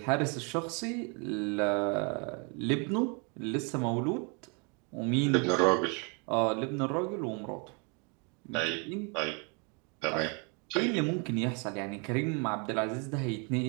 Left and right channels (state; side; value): quieter; left; 34.8 dB